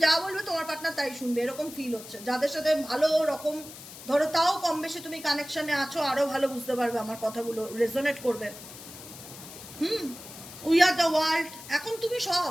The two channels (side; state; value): left; noise; hiss, 15 dB below the sound